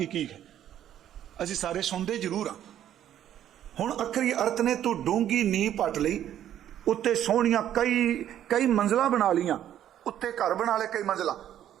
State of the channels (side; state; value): left; quieter; 11.0 dB